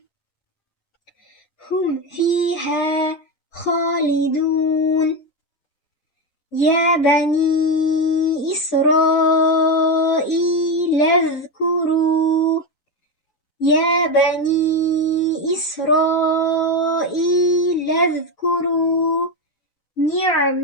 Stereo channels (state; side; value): late; right; 5.9 ms